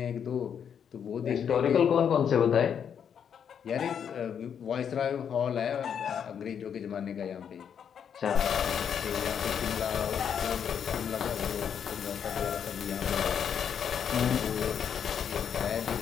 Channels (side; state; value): right; quieter; 7.9 dB